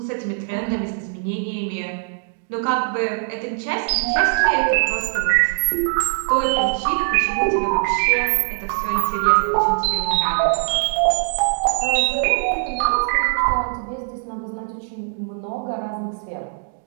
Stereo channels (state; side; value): silent; left; digital silence